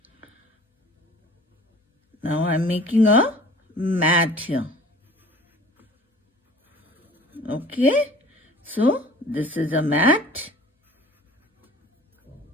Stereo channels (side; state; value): both; normal; correlation 0.46